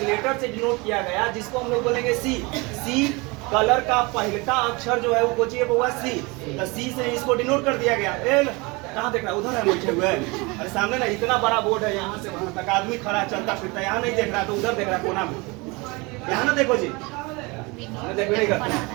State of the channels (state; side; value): quieter; left; 26.0 dB